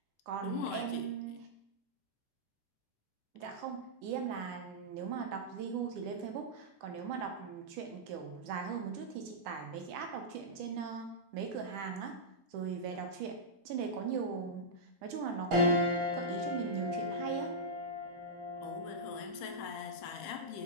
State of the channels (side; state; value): both; normal; correlation -0.12